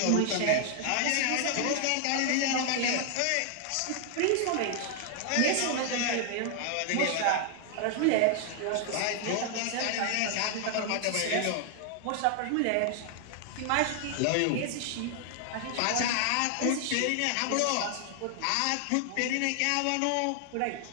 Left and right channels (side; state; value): both; different; correlation 0.00